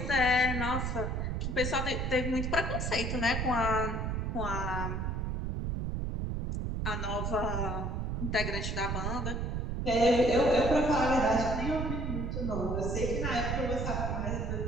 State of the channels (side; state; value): right; noise; rumble, 1 dB below the sound